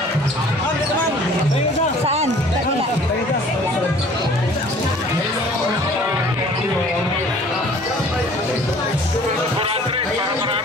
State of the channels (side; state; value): both; normal; correlation 0.51